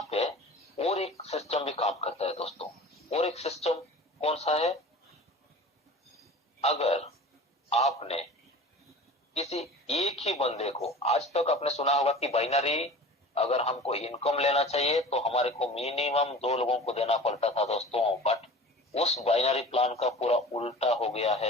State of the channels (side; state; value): both; normal; correlation 0.39